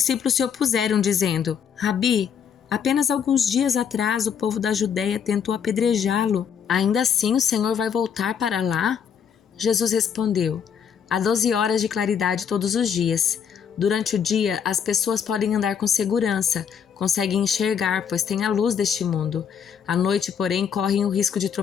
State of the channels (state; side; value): quieter; right; 7.6 dB